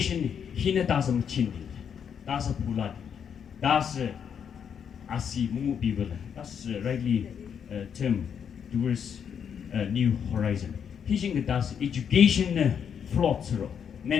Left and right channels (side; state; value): right; quieter; 7.7 dB